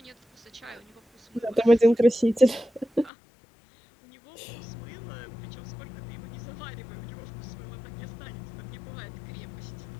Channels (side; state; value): right; drops out; at 3.1 s